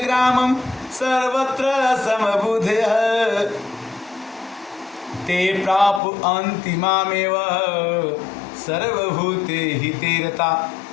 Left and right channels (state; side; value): drops out; right; at 6.0 s